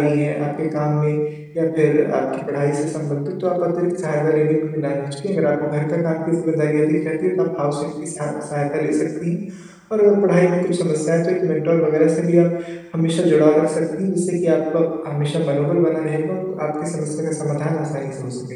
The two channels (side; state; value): both; identical; correlation 1.00